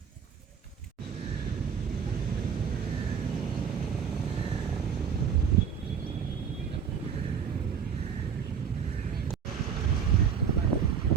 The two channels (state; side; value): quieter; left; 7.1 dB